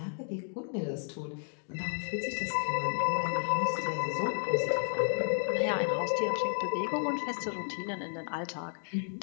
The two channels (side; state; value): right; silent; digital silence